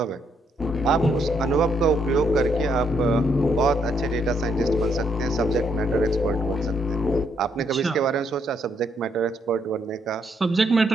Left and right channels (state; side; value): normal; both; correlation 0.74